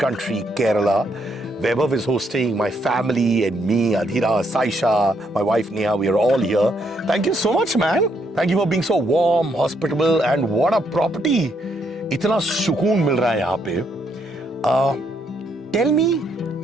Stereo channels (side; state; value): both; normal; correlation 0.74